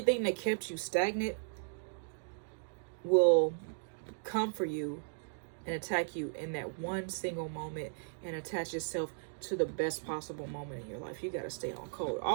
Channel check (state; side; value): silent; left; digital silence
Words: that kept you stagnant will come for you and attack you in that one single moment and attach itself to the best possible moment in your life. You got to stay on code.